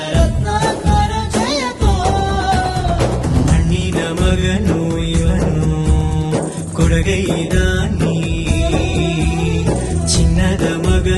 ರತ್ನಾಕರ ಜಯತೋ. ಮಣ್ಣಿನ ಮಗನು ಇವನು ಕೊಡುಗೈದಾನಿ, ಚಿನ್ನದ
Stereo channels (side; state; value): both; identical; correlation 1.00